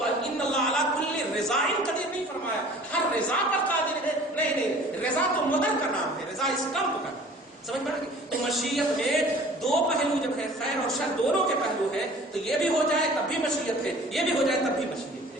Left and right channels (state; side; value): normal; both; correlation 0.47